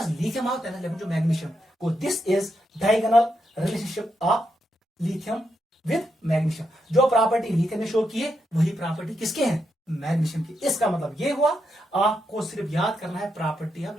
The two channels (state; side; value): normal; both; correlation 0.82